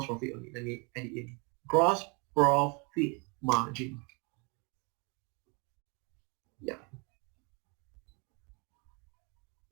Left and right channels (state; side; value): quieter; left; 32.0 dB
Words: profit only. Let me add it in. Gross profit margin. Yeah.